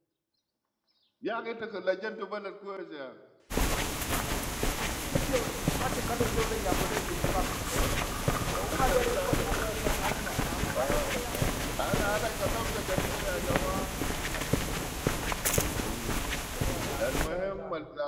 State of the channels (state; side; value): identical; both; correlation 1.00